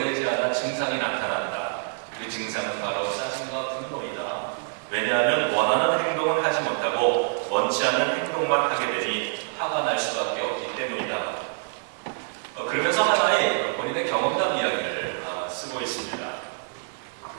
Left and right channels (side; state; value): left; silent; digital silence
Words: 않아 증상이 나타난다. 그 증상은 바로 짜증과 분노이다. 왜냐하면 원하는 행동은 하지 못하고 원치 않는 행동만 하게 되니 화가 날 수밖에 없기 때문이다. 그러면서 하나의 본인의 경험담 이야기를 쓰고 있습니다.